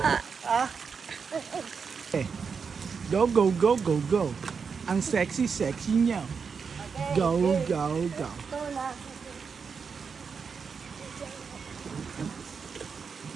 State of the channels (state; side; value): quieter; left; 5.7 dB